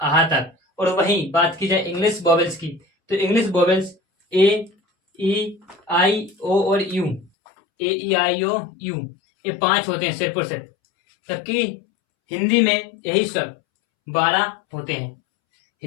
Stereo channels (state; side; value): drops out; right; at 7.3 s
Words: तक। और वहीं बात की जाए इंग्लिश वोवेल्स की, तो इंग्लिश वोवेल्स ए, ई, आई, ओ और you. A, E, I, O, you, ये 5 होते हैं सिर्फ और सिर्फ। जबकि हिंदी में यही स्वर 12 होते हैं।